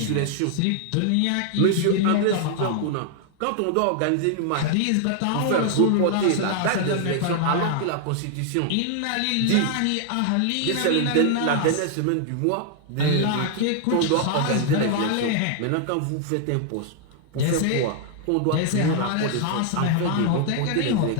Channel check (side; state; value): both; different; correlation 0.00